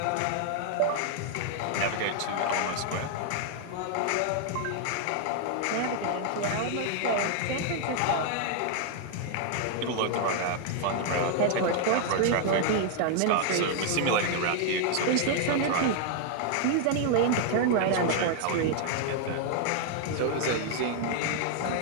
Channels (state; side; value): different; both; correlation 0.00